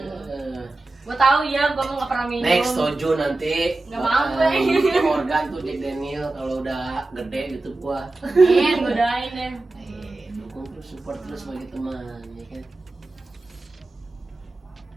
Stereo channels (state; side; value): quieter; left; 3.0 dB